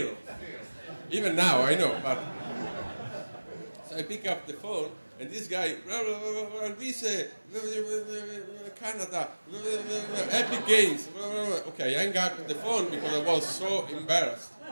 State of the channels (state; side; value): inverted; both; correlation -1.00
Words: Even now, I know. But so I pick up the phone, and this guy, Alvise, Canada, Epic Games. Okay, I hang up the phone because I was so embarrassed